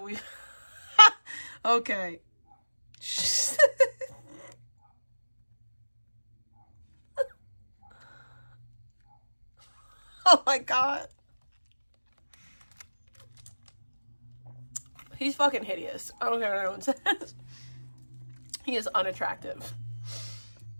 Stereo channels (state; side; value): inverted; both; correlation -1.00